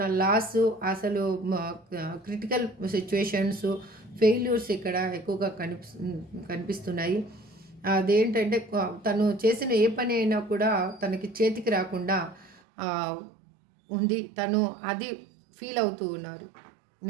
లాస్, అసలు క్రిటికల్ సిచ్యువేషన్స్, ఫెయిల్యూర్స్ ఇక్కడ ఎక్కువగా కనిపిస్తున్నాయి. అదేంటంటే తను చేసిన ఏ పని అయినా కూడా తనకి చేతికి రాకుండా ఉంది. తను అది ఫీల్ అవుతూ ఉన్నారు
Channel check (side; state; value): left; drops out; at 12.6 s